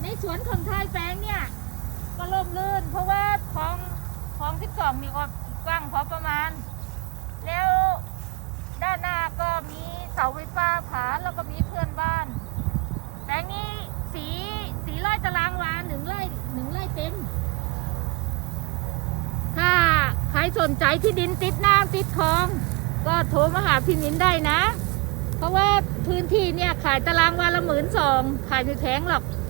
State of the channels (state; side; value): quieter; left; 26.2 dB